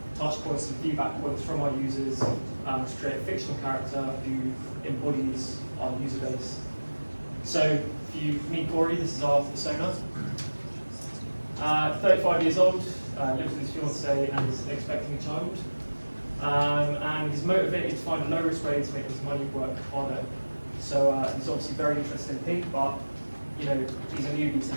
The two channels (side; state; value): both; inverted; correlation -1.00